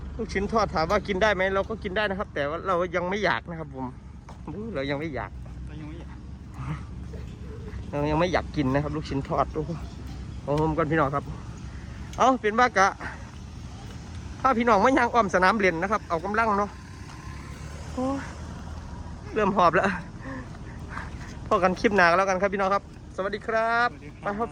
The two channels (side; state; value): both; identical; correlation 1.00